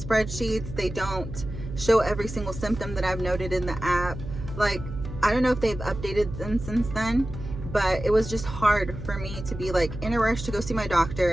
They don't show every single symptom that I've noted in the app. Like, I don't know if they've updated them since then, but it was just hard for me to be like in a rush to go see my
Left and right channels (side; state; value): right; noise; hum, 9 dB below the sound